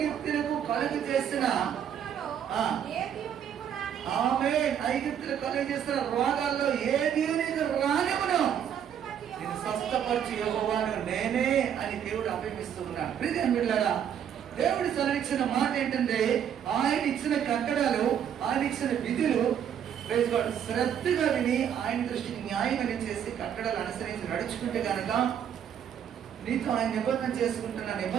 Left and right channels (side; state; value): left; quieter; 8.9 dB